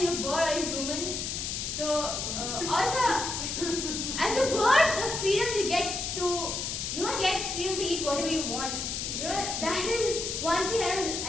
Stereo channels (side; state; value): left; noise; hiss, 3 dB below the sound